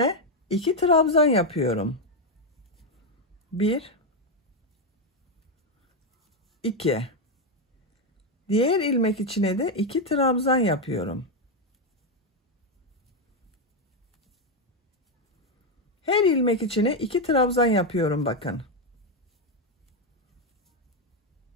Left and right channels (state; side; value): normal; both; correlation 0.05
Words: 2 trabzan yapıyorum. 1 2. Diğer ilmek içine de 2 trabzan yapıyorum. Her ilmek içine 2 trabzan yapıyorum bakın.